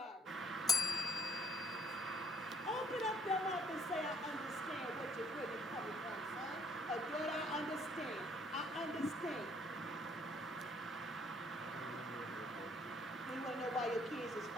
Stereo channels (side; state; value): both; normal; correlation 0.63